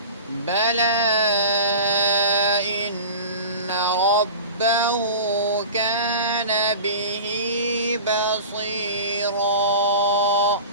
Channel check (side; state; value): both; inverted; correlation -0.34